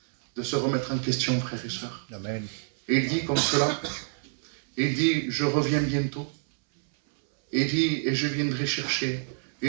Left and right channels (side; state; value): left; silent; 60 dB below the other